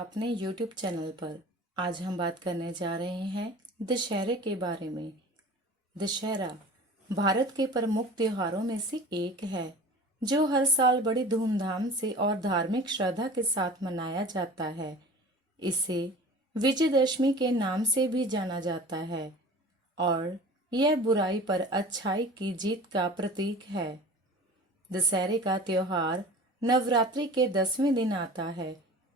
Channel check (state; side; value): normal; both; correlation 0.40